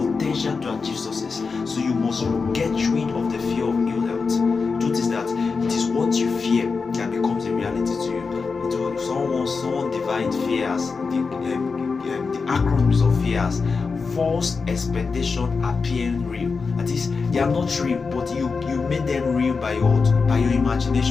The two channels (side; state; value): right; quieter; 4.8 dB